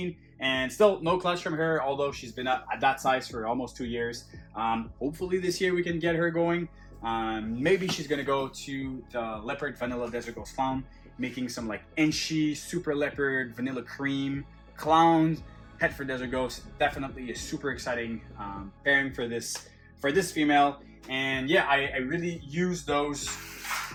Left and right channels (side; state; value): both; identical; correlation 1.00